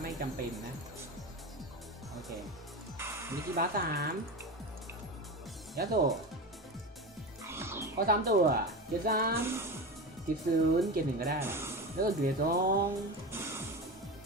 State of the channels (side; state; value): both; normal; correlation 0.24